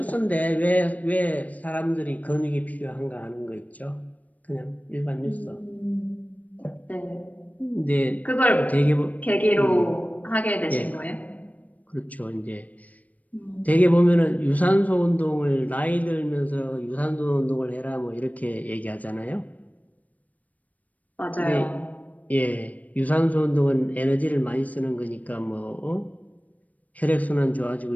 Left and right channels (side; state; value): right; late; 0.073 ms